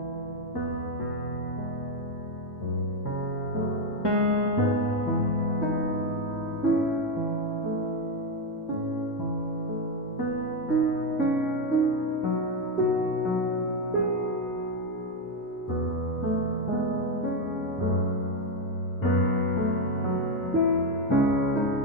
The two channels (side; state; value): both; normal; correlation 0.07